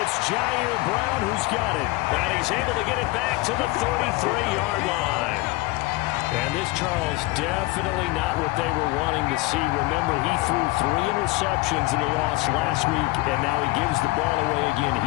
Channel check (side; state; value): right; quieter; 21.0 dB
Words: Jair Brown who's got it. And he's able to get it back to the 33-yard line. And this, Charles, definitely not what they were wanting to see. Remember, he threw 3 interceptions in the loss last week, and now he gives the ball away again